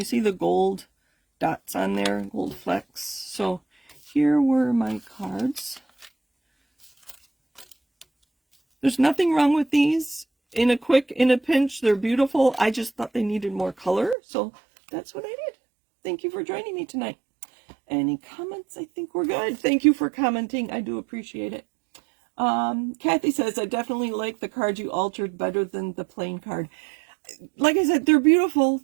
see the gold dots on there? Gold flecks. So here were my cards. There's nothing wrong with these. In a pinch, they're beautiful. I just thought they needed more color, so that's what I did. Thank you for joining me tonight. Any comments? I think we're good. Thank you for commenting. I do appreciate it. Kathy says, I definitely like the card you altered better than the plain card. Like I said, they're beautiful.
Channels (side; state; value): left; drops out; at 14.2 s